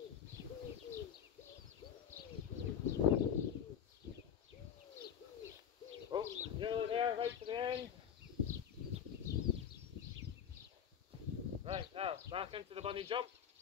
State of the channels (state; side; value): quieter; right; 8.5 dB